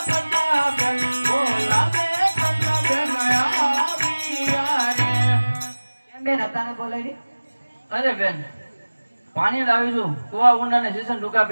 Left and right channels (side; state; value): both; inverted; correlation -1.00